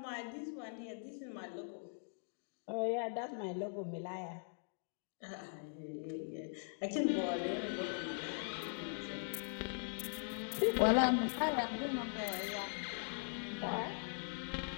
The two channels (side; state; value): right; silent; digital silence